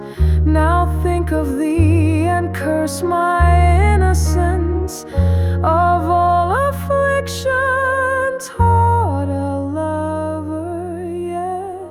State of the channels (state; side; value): identical; both; correlation 1.00